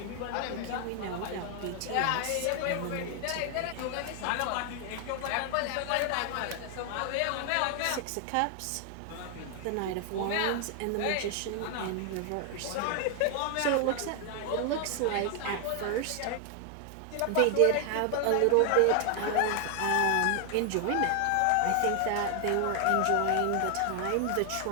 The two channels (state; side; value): different; both; correlation 0.00